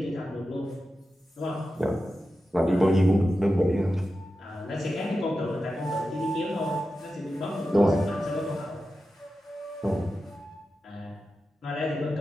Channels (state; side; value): normal; both; correlation 0.92